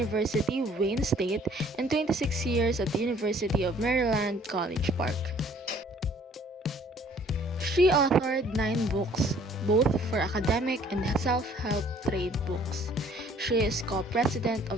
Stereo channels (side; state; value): both; normal; correlation 0.57